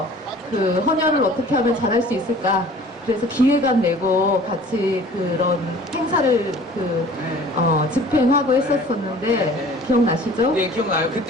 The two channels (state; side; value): normal; both; correlation 0.47